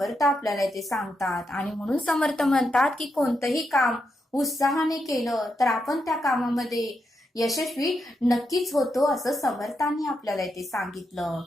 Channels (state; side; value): normal; both; correlation 0.83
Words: आपल्याला इथे सांगतात. आणि म्हणून समर्थ म्हणतात की कोणतंही काम उत्साहाने केलं तर आपण त्या कामामध्ये यशस्वी नक्कीच होतो असं समर्थांनी आपल्याला इथे सांगितलं.